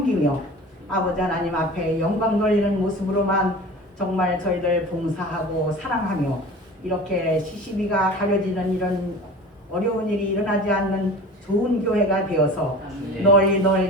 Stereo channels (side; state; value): both; normal; correlation 0.38